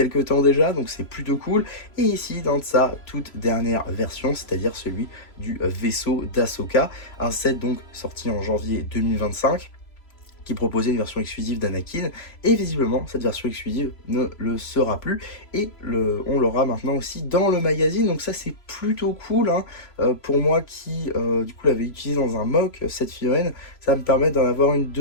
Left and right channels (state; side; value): late; right; 3.0 ms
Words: temps déjà, donc c'est plutôt cool. Et ici, dans sa toute dernière version, c'est-à-dire celui du vaisseau d'Ahsoka, un set donc sorti en janvier 2025, qui proposait une version exclusive d'Anakin, et visiblement cette version exclusive ne le sera plus, et on l'aura maintenant aussi dans le magazine, donc ça c'est plutôt cool, hein. Pour moi qui du coup l'avais utilisé dans un mock, cette figurine, ça me permet d'en avoir une